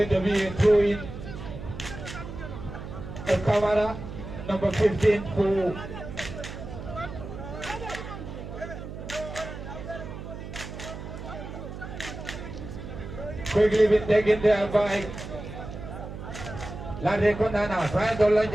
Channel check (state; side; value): noise; right; hum, 10 dB below the sound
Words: to be a throw in the camera, number 15 for quickly been taken there by LATRIKUNDA now, trying to launch